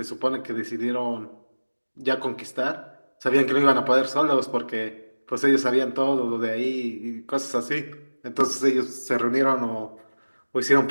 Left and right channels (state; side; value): inverted; both; correlation -1.00